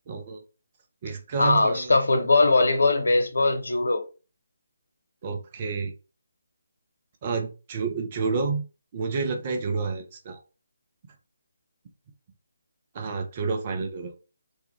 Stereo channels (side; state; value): both; inverted; correlation -0.84